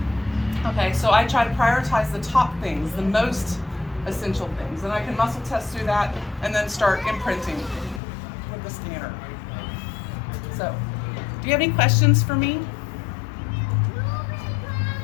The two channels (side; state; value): right; drops out; at 8.0 s